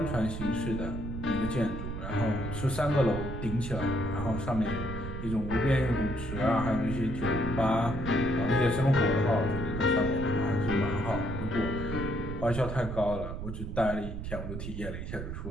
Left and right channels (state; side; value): noise; right; rumble, 6 dB below the sound